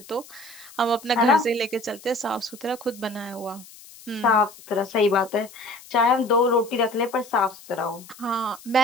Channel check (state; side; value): noise; left; hiss, 20 dB below the sound